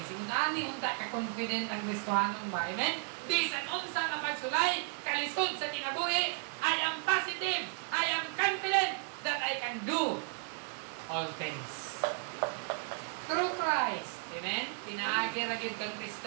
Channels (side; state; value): left; silent; 55 dB below the other